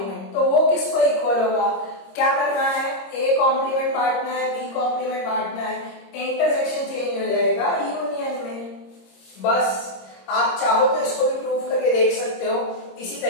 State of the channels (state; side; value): late; right; 26 ms